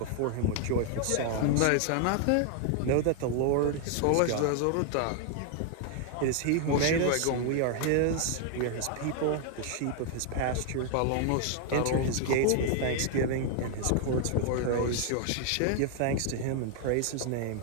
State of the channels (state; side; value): different; both; correlation 0.00